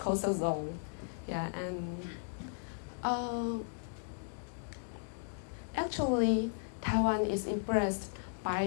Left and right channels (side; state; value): right; silent; digital silence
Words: zone? Yeah, and actually, Taiwan is impressed